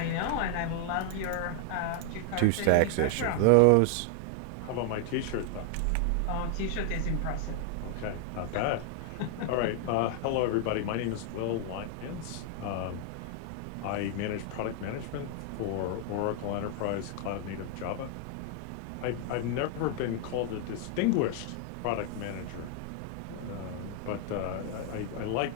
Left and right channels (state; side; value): different; both; correlation 0.00